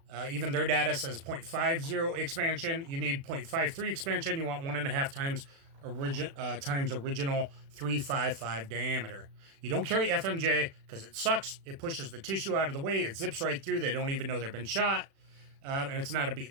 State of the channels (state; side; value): late; left; 36 ms